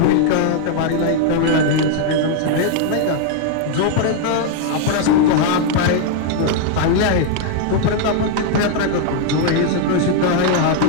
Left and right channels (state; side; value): different; both; correlation 0.00